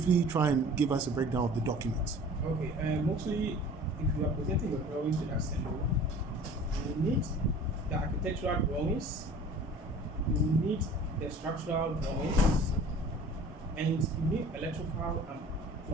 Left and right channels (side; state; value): both; normal; correlation 0.45